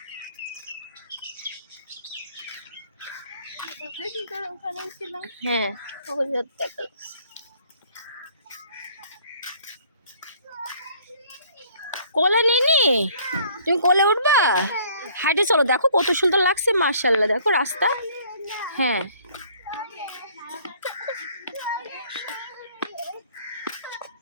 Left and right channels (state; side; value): inverted; both; correlation -0.57